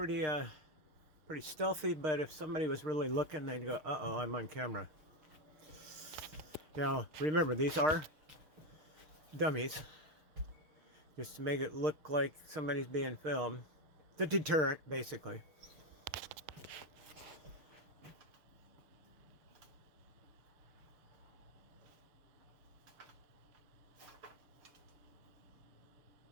stealthy, but if somebody was really looking, they'd go, uh-oh, I'm on camera. Now, remember, these are dummies, just to make it look like somebody's being filmed. The deterrent, basically.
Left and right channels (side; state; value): left; late; 6.5 ms